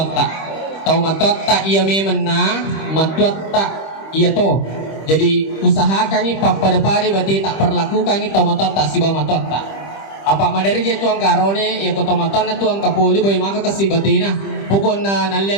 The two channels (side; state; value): right; late; 25 ms